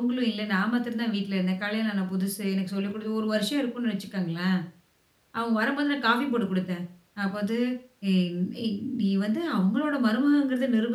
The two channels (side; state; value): both; identical; correlation 1.00